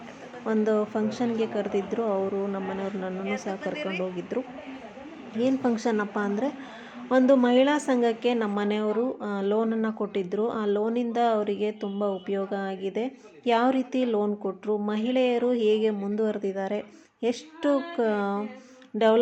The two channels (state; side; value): identical; both; correlation 1.00